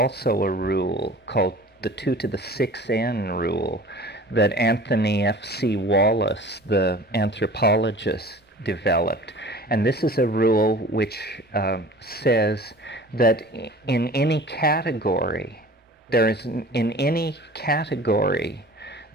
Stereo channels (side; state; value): both; normal; correlation 0.43